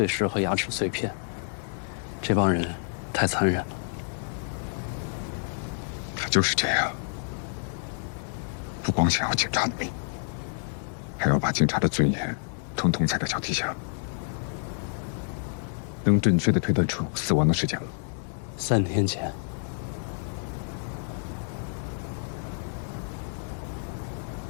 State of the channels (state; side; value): silent; right; digital silence